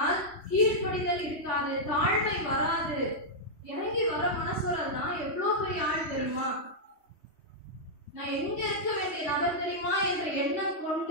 கீழ்ப்படிதல் இருக்காது, தாழ்மை வராது. இறங்கி வர மனசுறதுதான் எவ்வளவு பெரிய ஆள் தெரியுமா? நான் எங்க இருக்க வேண்டிய நபர் தெரியுமா என்ற எண்ணம்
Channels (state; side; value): late; right; 3.1 ms